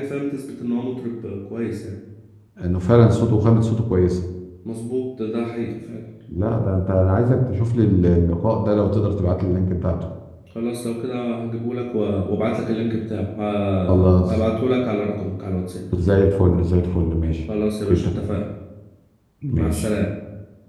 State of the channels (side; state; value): both; identical; correlation 1.00